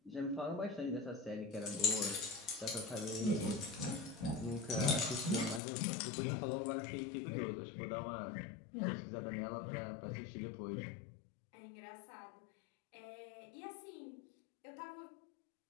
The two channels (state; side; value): drops out; right; at 5.6 s